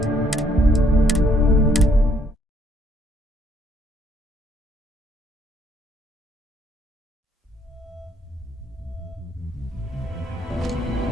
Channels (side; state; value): both; normal; correlation 0.68